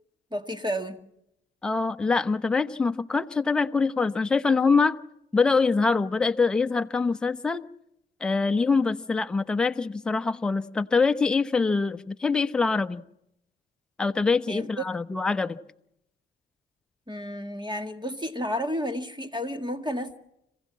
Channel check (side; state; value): right; quieter; 3.7 dB